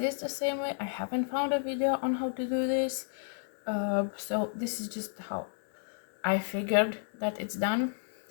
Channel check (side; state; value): right; silent; digital silence